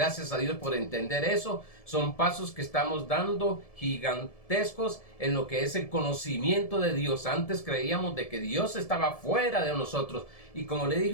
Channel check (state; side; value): late; right; 1.7 ms